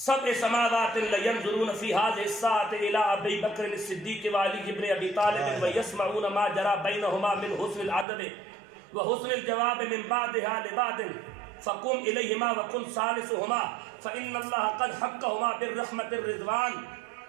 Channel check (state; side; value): drops out; left; at 8.1 s